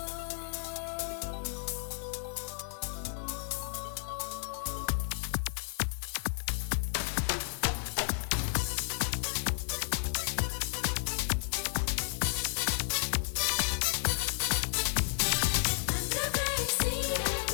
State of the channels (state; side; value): silent; right; digital silence